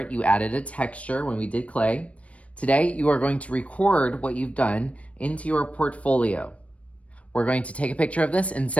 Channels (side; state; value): right; late; 0.064 ms